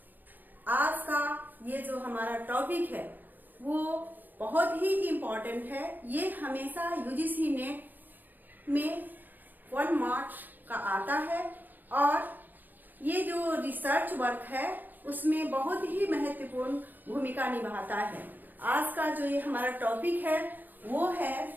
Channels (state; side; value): late; left; 0.087 ms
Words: आज का ये जो हमारा टॉपिक है वो बहुत ही इम्पोर्टेंट है। ये हमेशा यूजीसी नेट में 1 मार्क्स का आता है और ये जो रिसर्च वर्क है उसमें बहुत ही महत्वपूर्ण भूमिका निभाता है। आज का जो ये हमारा टॉपिक है वो है